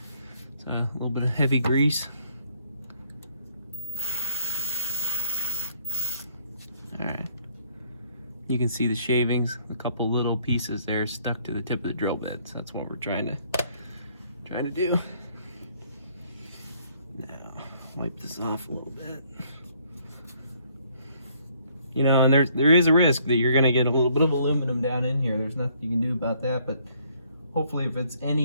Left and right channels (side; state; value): both; inverted; correlation -0.64